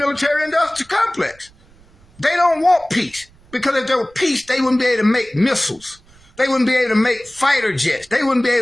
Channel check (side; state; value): right; noise; rumble, 28 dB below the sound